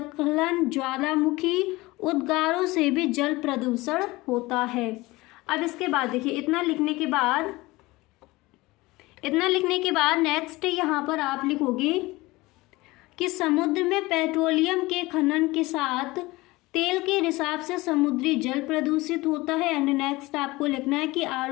ज्वालामुखी उद्गारों से भी जल प्रदूषण होता है। अब इसके बाद देखिए इतना लिखने के बाद नेक्स्ट यहाँ पर आप लिखोगे कि समुद्र में पेट्रोलियम के खनन के साथ तेल के रिसाव से समुद्री जल प्रदूषित होता है। एंड नेक्स्ट आपको लिखना है कि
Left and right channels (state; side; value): quieter; right; 20.9 dB